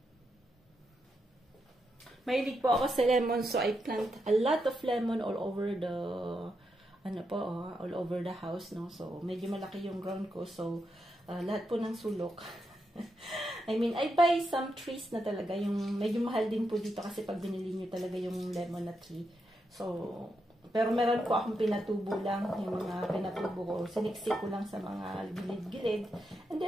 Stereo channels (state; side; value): normal; both; correlation 0.84